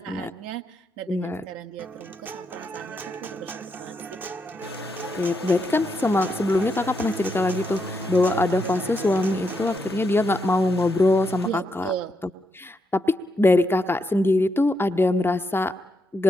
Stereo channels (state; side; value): normal; both; correlation 0.81